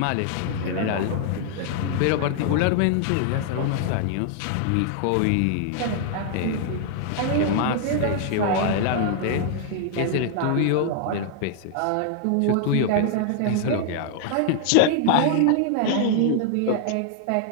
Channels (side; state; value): both; different; correlation 0.00